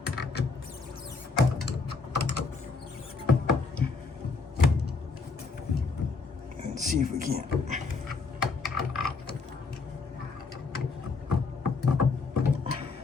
And see if we can't.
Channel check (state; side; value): quieter; right; 4.3 dB